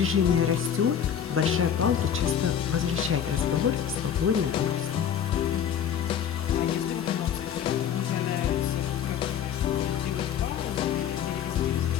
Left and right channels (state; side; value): quieter; right; 8.7 dB